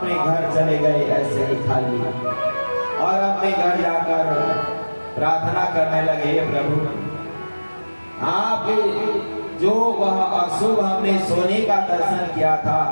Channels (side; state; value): both; inverted; correlation -1.00